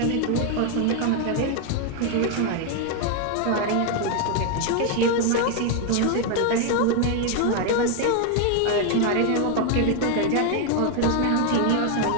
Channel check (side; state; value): both; different; correlation 0.01